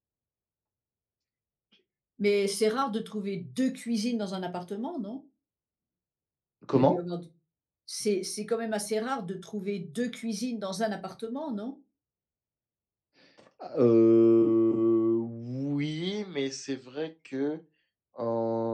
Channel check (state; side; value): identical; both; correlation 1.00